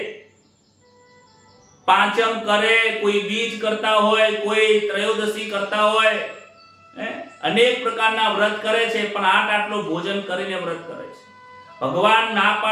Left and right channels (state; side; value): identical; both; correlation 1.00